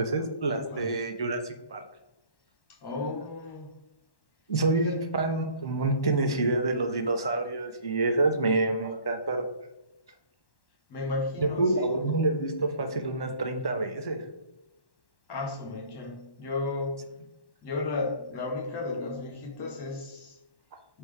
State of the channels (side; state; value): right; late; 1.1 ms